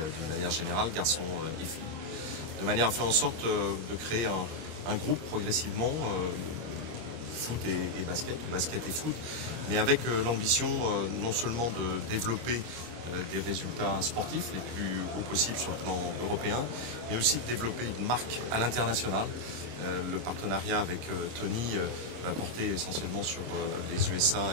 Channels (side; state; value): left; late; 26 ms